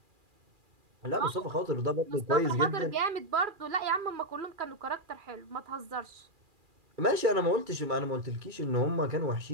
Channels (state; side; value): late; left; 2.4 ms